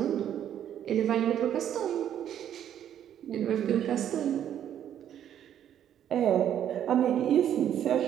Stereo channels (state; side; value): quieter; left; 10.2 dB